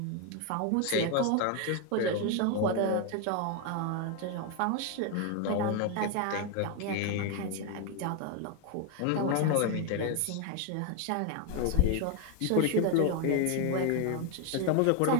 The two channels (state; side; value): different; both; correlation 0.01